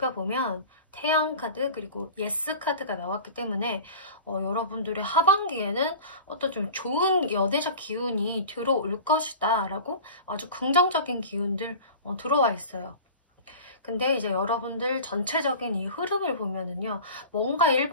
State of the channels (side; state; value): both; inverted; correlation -0.36